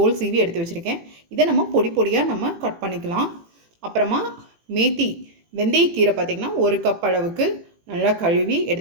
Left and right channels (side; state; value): left; late; 18 ms